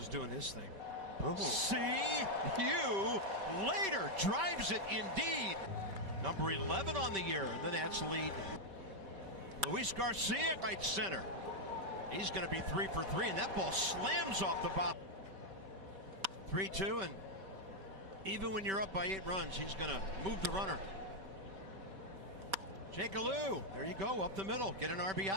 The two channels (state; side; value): late; left; 4.1 ms